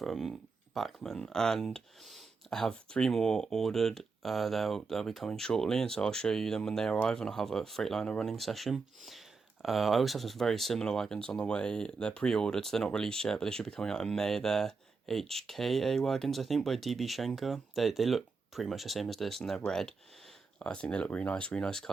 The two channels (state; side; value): quieter; left; 4.6 dB